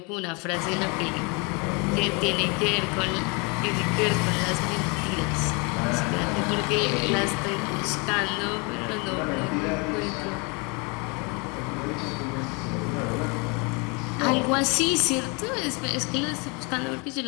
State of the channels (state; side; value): quieter; right; 31.2 dB